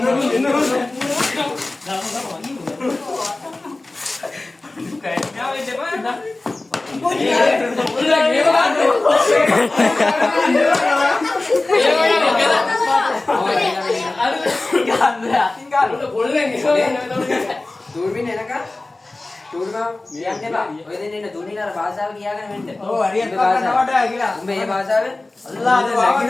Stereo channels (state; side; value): quieter; right; 3.0 dB